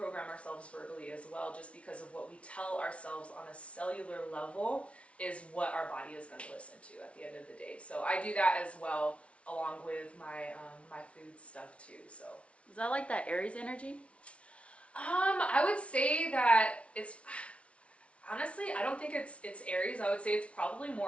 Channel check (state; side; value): late; right; 0.062 ms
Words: ourselves verbally as well, just because of what we tell ourselves on a cellular level is what our body is going to listen to at the end of the day. So I do that as well, along with my my food stuff too. So Is that like that Aries energy? I would say that it's, honestly, I don't think it's Aries. I would say it's probably